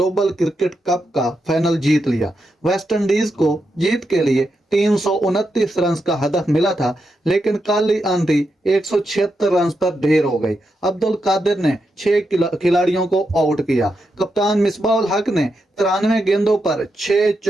क्रिकेट कप का फाइनल जीत लिया। वेस्ट इंडीज को जीत के लिए 329 रन का हदफ मिला था, लेकिन काली आंधी 176 रन पर ढेर हो गई। अब्दुल कादिर ने 6 खिलाड़ियों को आउट किया। कप्तान मिसबाह हक ने 93 गेंदों पर 6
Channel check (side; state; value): both; normal; correlation 0.85